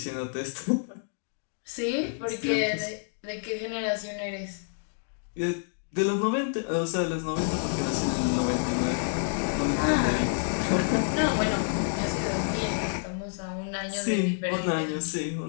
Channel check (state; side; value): silent; right; digital silence